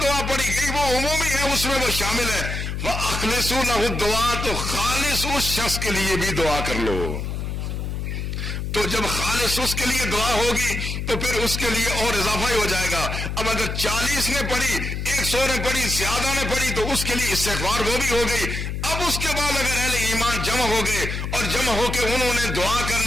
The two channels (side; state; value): left; noise; hum, 4 dB below the sound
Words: دعا پڑھی گئی وہ عمومی ہے، اس میں وہ شامل ہے۔ فاخلصوا له دعا، تو خالص اس شخص کے لیے بھی دعا کر لو۔ تو جب خالص اس کے لیے دعا ہوگی تو پھر اس کے لیے اور اضافہ ہی ہو جائے گا۔ اب اگر 40 نے پڑھی، 100 نے پڑھی، زیادہ نے پڑھی تو اس کے لیے استغفار وہ بھی ہو گئی۔ اب اس کے بعد اگر اہل ایمان جمع ہو گئے اور جمع ہو کے انہوں نے دعا کر